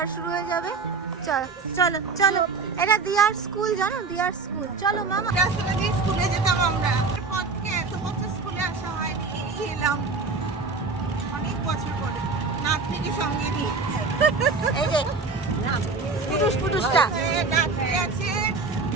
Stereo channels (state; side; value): quieter; left; 4.2 dB